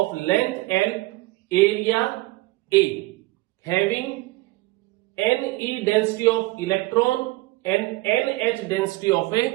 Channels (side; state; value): left; quieter; 20.4 dB